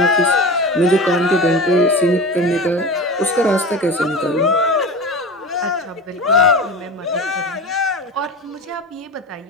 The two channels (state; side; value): normal; both; correlation 0.30